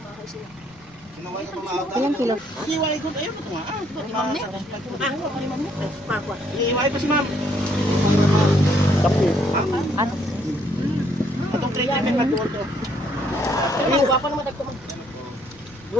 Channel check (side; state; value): left; noise; rumble, 27 dB below the sound